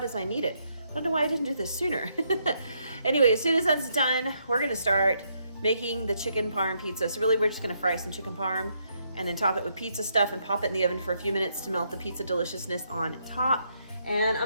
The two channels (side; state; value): both; inverted; correlation -0.76